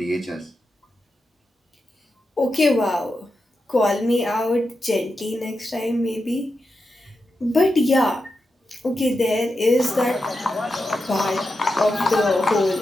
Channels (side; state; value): both; normal; correlation 0.88